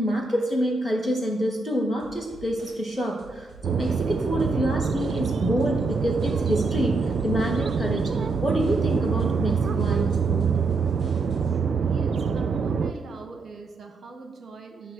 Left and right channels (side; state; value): left; quieter; 3.3 dB